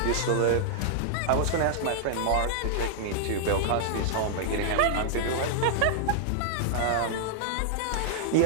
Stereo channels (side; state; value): both; different; correlation -0.01